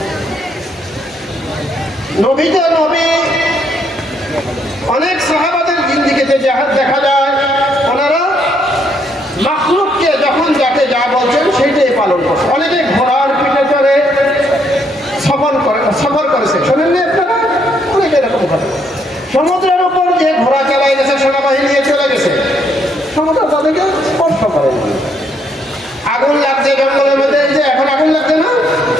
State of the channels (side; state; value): both; normal; correlation 0.72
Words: নবী তো নবী, অনেক সাহাবাদের জিন্দিগিতে দেখা যায় ওনারা মাখলুককে যখন যাকে যা বলছেন সেইটাই পালন করছে। অনেকে ঘোড়ার পিঠে চড়ে সফর করেছে, শোনেন না আপনারা, অনেকে এরকম করে সমুদ্রের উপর যে ঘোড়া চালাই গেছে, সেনাবাহিনী নিয়ে চলে গেছে, সমুদ্র তাদেরকে স্পর্শ করে। আগুন লাগছে জঙ্গলের মধ্যে, এই যে এখন আগুন লাগছে না,